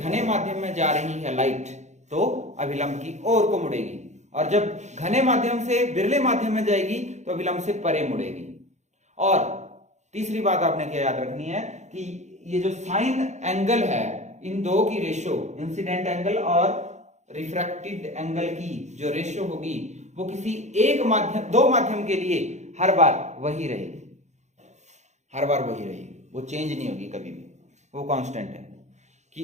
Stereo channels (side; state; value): left; late; 0.33 ms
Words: माध्यम में जा रही है लाइट तो अभिलंब की ओर को मुड़ेगी, और जब घने माध्यम से विरले माध्यम में जाएगी तो अभिलंब से परे मुड़ेगी। और तीसरी बात आपने क्या याद रखनी है कि ये जो साइन एंगल है, इन दो की रेशो, इंसिडेंट एंगल और रिफ्रैक्टेड एंगल की जो रेशो होगी वो किसी एक माध्यम, दो माध्यम के लिए हर बार वही रहेगी, हर बार वही रहेगी, वो चेंज नहीं होगी कभी भी, वो कांस्टेंट है।